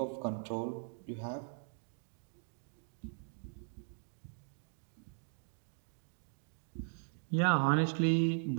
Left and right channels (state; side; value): silent; left; digital silence